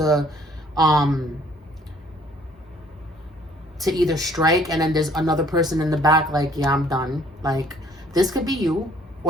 either strike, and then there's another person in the back like, yeah, I'm done. Like this could be you,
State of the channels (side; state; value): both; normal; correlation 0.60